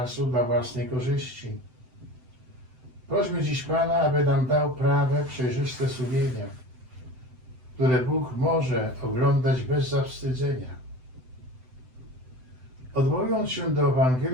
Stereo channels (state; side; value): late; left; 7.8 ms